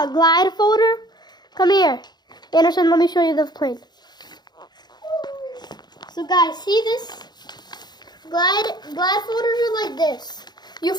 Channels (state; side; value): late; right; 0.20 ms